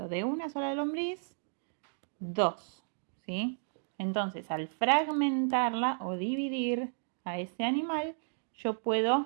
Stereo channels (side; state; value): left; silent; digital silence